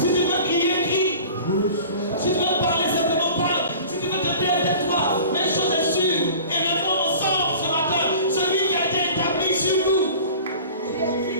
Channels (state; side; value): inverted; both; correlation -0.42